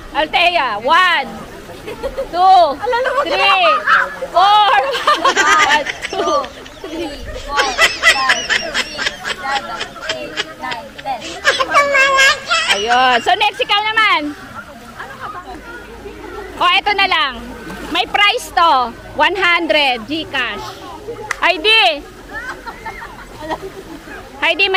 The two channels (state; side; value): identical; both; correlation 1.00